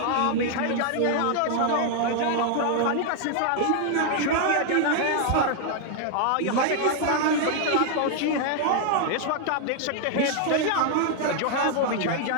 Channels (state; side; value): different; both; correlation 0.00